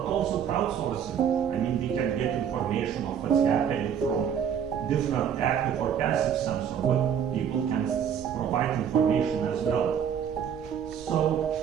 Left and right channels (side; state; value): left; quieter; 8.3 dB